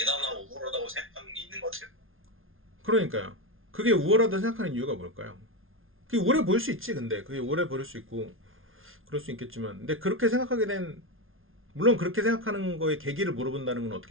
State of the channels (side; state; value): left; late; 0.60 ms